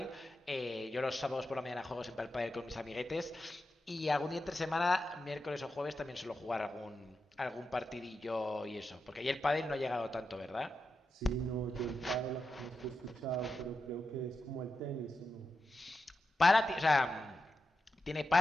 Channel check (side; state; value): both; normal; correlation 0.89